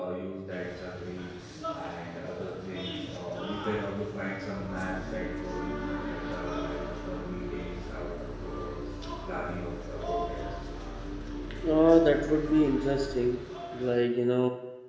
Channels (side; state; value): both; identical; correlation 1.00